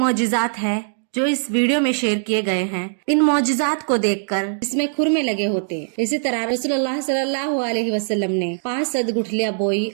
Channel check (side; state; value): left; silent; digital silence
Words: है जो इस वीडियो में शेयर किए गए हैं। इन मौजिज़ात को देखकर इसमें खुरमे लगे होते। इसी तरह रसूलुल्लाह सल्लल्लाहु अलैहि वसल्लम ने 5 सद गुठलियां बोई